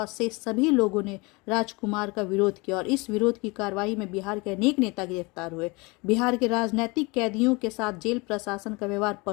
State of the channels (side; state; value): right; quieter; 26.4 dB